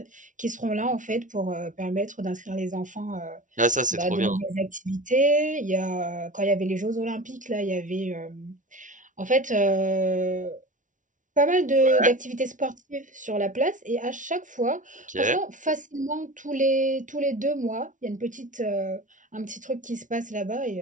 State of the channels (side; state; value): left; late; 0.37 ms